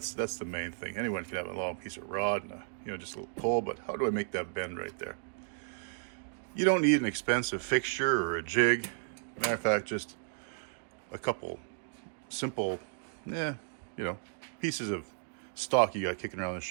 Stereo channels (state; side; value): silent; left; digital silence